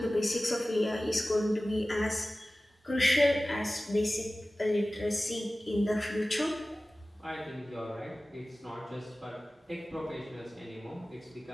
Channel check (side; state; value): both; normal; correlation 0.97